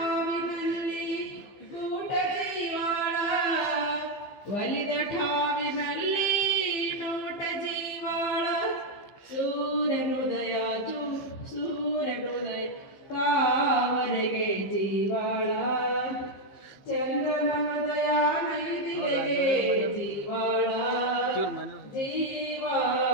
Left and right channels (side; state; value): right; late; 15 ms